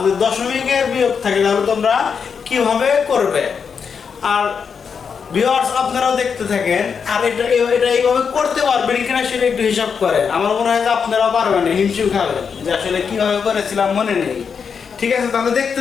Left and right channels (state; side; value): quieter; right; 6.3 dB